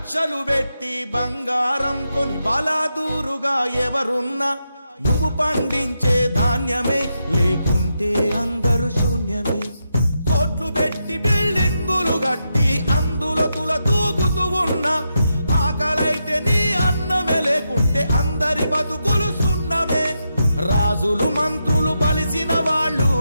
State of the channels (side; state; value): both; inverted; correlation -0.85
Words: పెట్టి బంగారం కొని బలాదూరుగా ఎవరున్నా, నువ్వు పండించే ధాన్యమే లేకుంటే అందరూ శూన్యమే. కోట్లు పెట్టి బిల్డింగులు కట్టి అందులో తుల తూగుతూ ఉన్నా, ఆకలైతే నీ అన్నమే లేకుంటే అందరి బతుకులు సున్నమే. రాజులు మంత్రులు బలిసిన వాళ్ళు